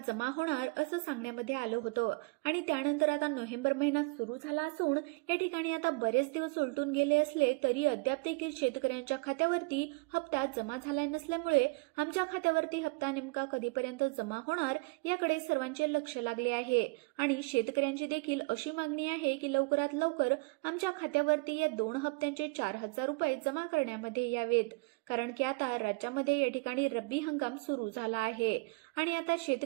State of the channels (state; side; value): quieter; left; 28.9 dB